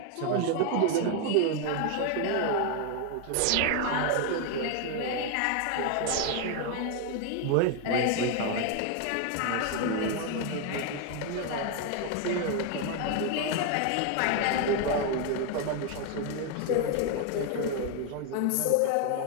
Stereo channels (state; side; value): different; both; correlation 0.01